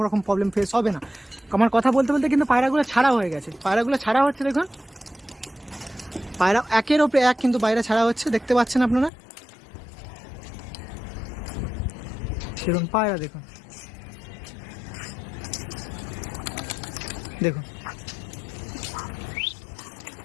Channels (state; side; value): drops out; right; at 9.1 s